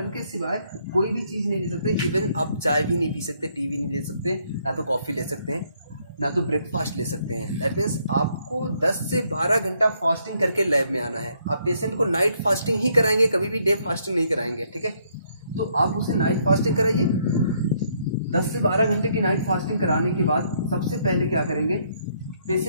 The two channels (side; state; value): both; inverted; correlation -0.70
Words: के सिवाय कोई भी चीज़ नहीं ले सकते। इवन आप चाय भी नहीं पी सकते, टी भी नहीं ले सकते, ना तो कॉफ़ी ले सकते हैं, ना तो ब्रेकफास्ट ले सकते हैं। दैट मीन्स आपको 10 से 12 घंटा फास्टिंग करके लैब में आना है। आप पेशेंट को नाइट फास्टिंग ही कराएंगे, कभी भी डे फास्टिंग नहीं कराएंगे, ठीक है। तो आप उसे नाइट फास्टिंग कराइए। 10 से 12 घंटे की नाइट फास्टिंग कराने के बाद सबसे पहले क्या करेंगे,